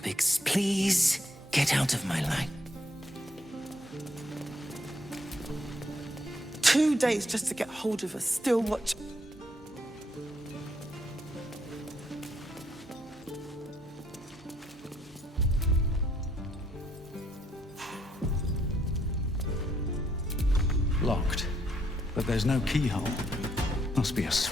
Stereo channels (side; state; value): both; normal; correlation 0.72